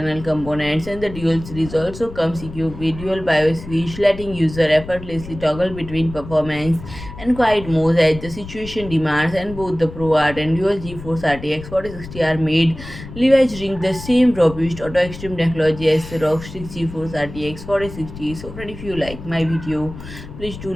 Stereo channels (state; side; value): noise; left; rumble, 13 dB below the sound